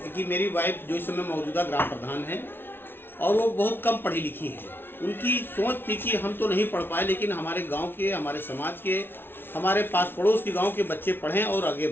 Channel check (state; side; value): late; right; 0.11 ms